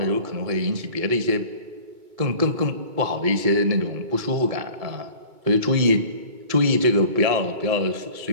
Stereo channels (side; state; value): left; late; 2.2 ms